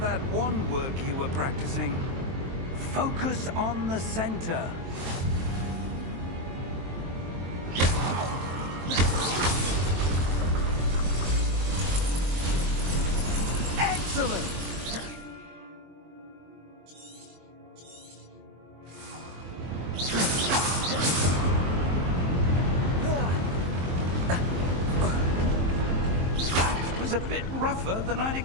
wand work you were practicing. Focus on the center. Excellent! That was a bit rougher than I'd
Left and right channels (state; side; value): late; left; 23 ms